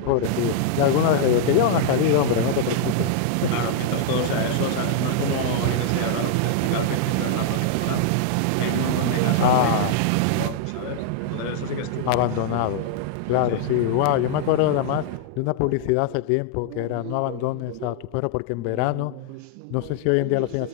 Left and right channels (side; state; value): both; different; correlation -0.01